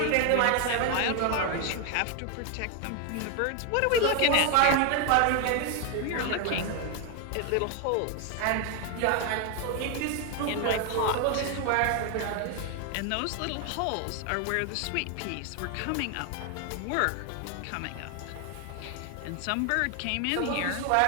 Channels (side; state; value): both; different; correlation 0.01